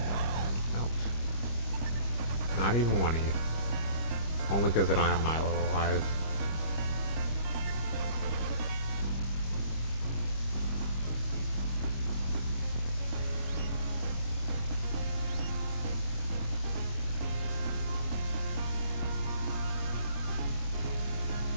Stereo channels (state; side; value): late; right; 25 ms